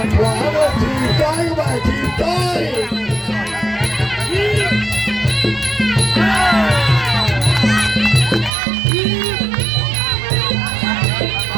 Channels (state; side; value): drops out; left; at 8.5 s